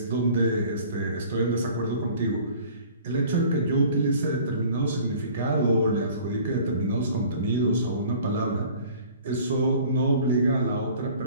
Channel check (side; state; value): both; inverted; correlation -0.49